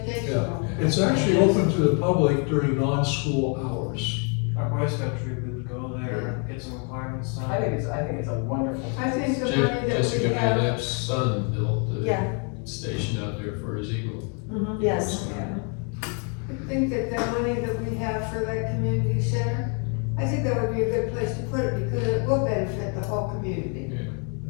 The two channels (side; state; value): right; quieter; 38.8 dB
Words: It's actually open to the public during non-school hours. Our Boy Scout troop would go there, get some requirements done. I think it's a wonderful. I think the money that Jessica we have, Van App's son built the Yeah. station out there for his eagle. Yes. I think that the money that we have for that community center, I think that would be a good place to put it because it will benefit the whole community.